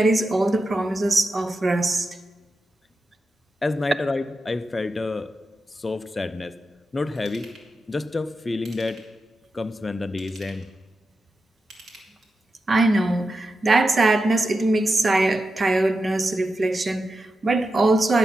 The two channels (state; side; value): normal; both; correlation 0.89